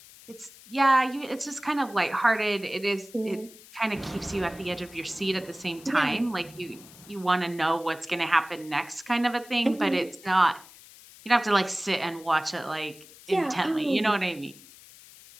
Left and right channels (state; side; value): noise; left; hiss, 21 dB below the sound